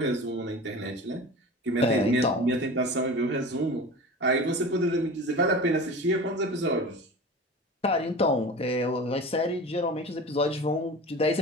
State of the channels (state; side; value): normal; both; correlation 0.35